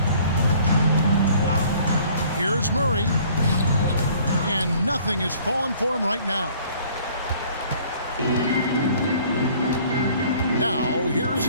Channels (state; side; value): inverted; both; correlation -0.55